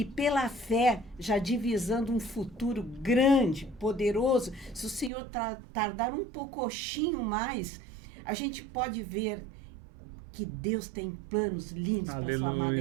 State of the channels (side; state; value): left; drops out; at 5.1 s